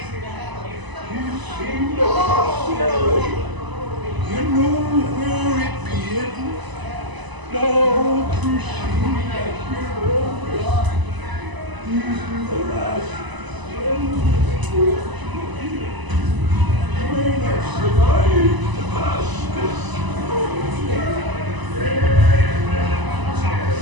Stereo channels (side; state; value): left; late; 1.0 ms